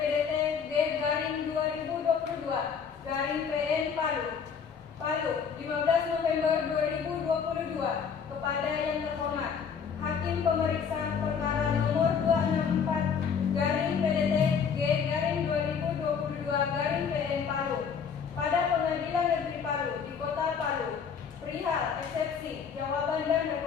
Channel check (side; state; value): right; quieter; 6.6 dB